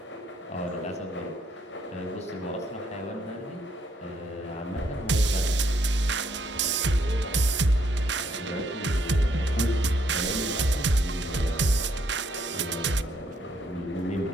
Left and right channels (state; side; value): normal; both; correlation 0.71